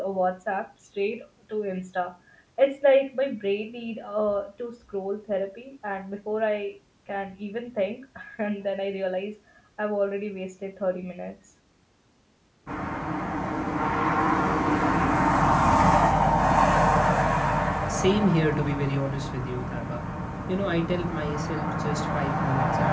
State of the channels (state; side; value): identical; both; correlation 1.00